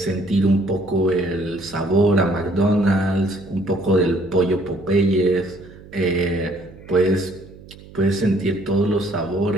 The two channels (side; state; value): right; noise; hum, 20 dB below the sound